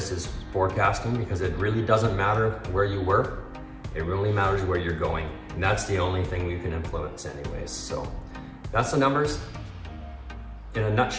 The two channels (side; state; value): both; identical; correlation 1.00